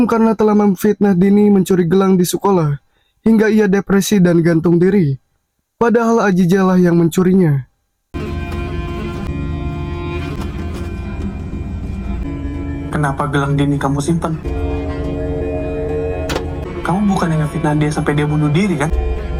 karena telah memfitnah Dini mencuri gelang di sekolah, hingga ia depresi dan gantung diri. Padahal Ajijah lah yang mencurinya. Kenapa gelang Dini kamu simpan? Kamu bukan yang ngefitnah dia sampai dia bunuh diri kan?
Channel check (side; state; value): both; identical; correlation 1.00